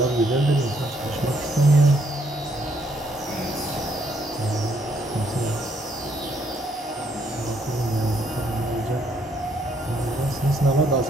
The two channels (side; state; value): both; normal; correlation 0.70